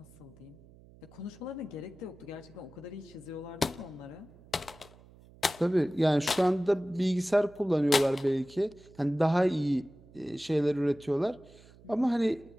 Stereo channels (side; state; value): right; noise; hum, 24 dB below the sound